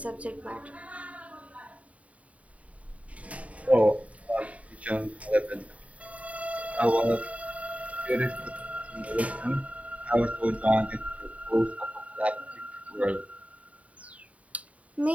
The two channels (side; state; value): left; late; 0.067 ms